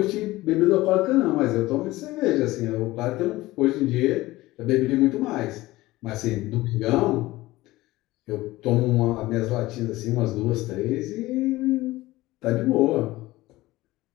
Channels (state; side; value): quieter; right; 18.4 dB